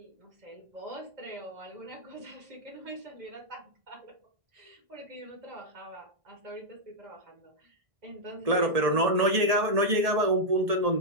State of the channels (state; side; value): late; left; 1.7 ms